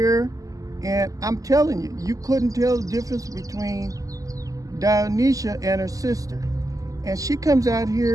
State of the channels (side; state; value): left; late; 0.17 ms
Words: and I'm telling you, you couldn't tell the difference between Dionysia and her sister. And she comes out